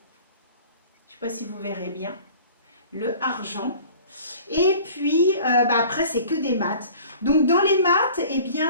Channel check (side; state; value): both; inverted; correlation -0.46